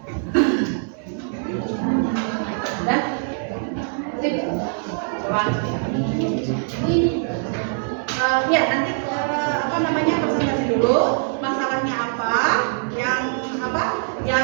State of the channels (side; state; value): left; silent; 64 dB below the other